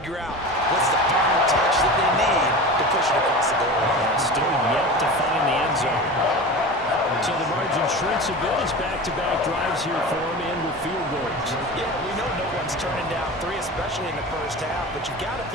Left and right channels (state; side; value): normal; both; correlation 0.31